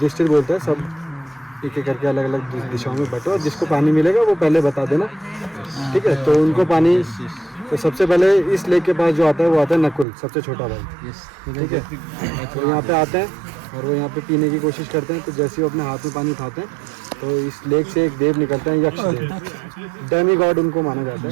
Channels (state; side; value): drops out; left; at 10.1 s